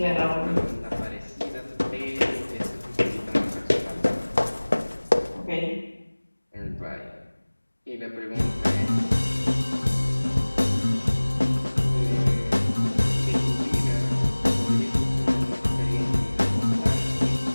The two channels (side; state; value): both; inverted; correlation -1.00